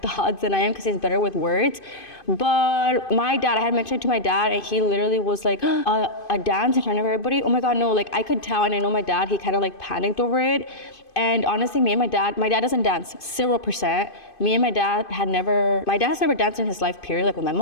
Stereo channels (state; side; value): late; right; 2.5 ms